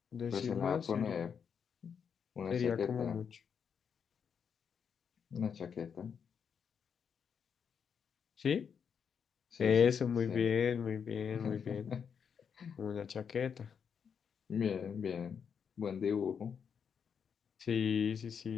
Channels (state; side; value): quieter; right; 7.0 dB